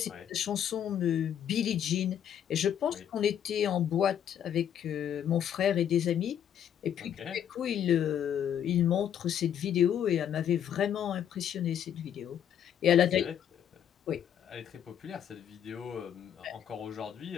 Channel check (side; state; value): right; quieter; 9.5 dB